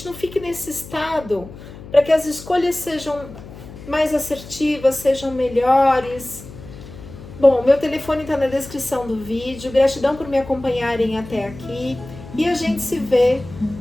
não fique nesse estado, para que as escolhas sejam mais assertivas, sejam melhores. Bom, meu telefone está na descrição do vídeo. Gratidão por me acompanharem até aqui e a gente se vê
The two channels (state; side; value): noise; left; hum, 16 dB below the sound